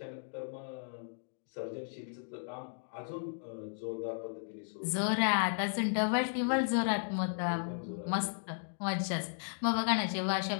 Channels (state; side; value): silent; right; digital silence